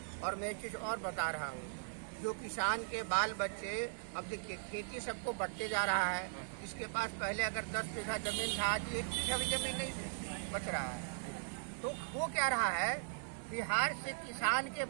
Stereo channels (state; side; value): silent; left; digital silence